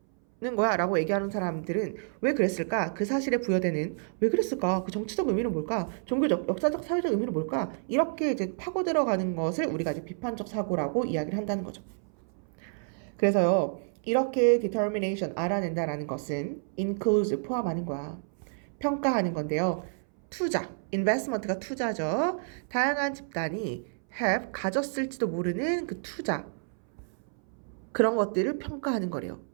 거야 라고 얘기하는 사람들은 왜 그랬을까? 그 사실에 부여되는 왜 그랬을까? 그 정치적 의미는 뭘까? 종교적, 역사적, 사회적 의미는 뭘까? 이렇게 이제 파고 들어가는 것을 우리가 이제 비판적 사고라고 이야기를 한다는 거죠. 그래서요, 이렇게 determination, 알아낸다라는 것은 includes, 포함하는 거야. 평가하는 건데요. 투자, investment가 투자죠. 다양한 집단이 have, 가졌을지도 모르는 그 투자, 그런 것들을 평가하는 거래요.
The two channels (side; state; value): left; silent; 58 dB below the other